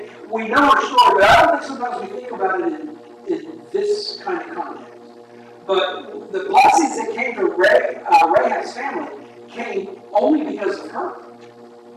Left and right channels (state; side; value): identical; both; correlation 1.00